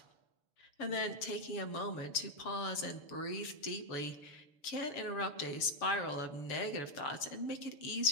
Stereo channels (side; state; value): right; late; 6.9 ms